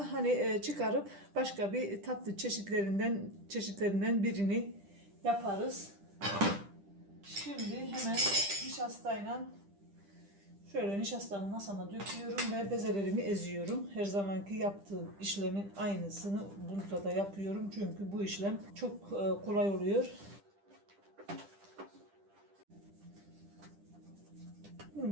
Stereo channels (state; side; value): late; left; 10 ms